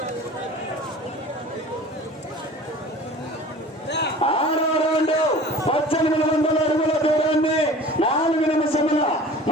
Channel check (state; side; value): normal; both; correlation 0.42